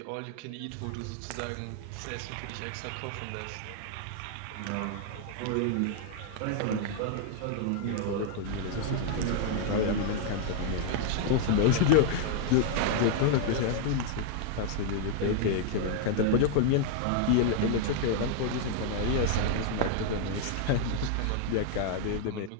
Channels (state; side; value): different; both; correlation 0.00